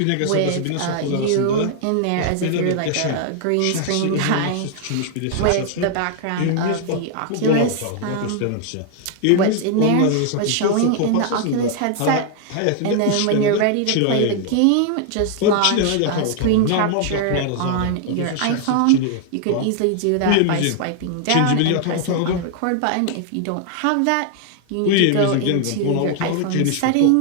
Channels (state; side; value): different; both; correlation 0.00